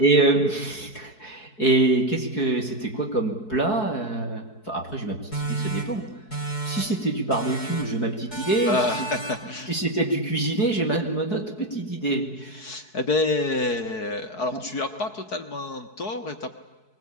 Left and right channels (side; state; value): right; late; 4.7 ms